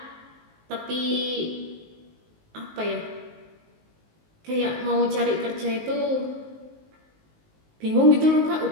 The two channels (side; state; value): left; late; 19 ms